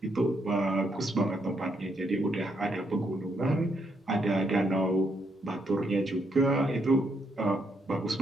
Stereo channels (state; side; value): normal; both; correlation 0.76